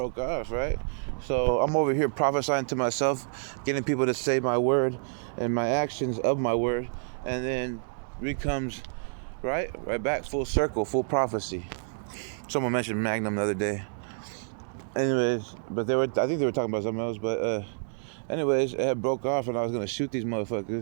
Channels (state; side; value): silent; left; digital silence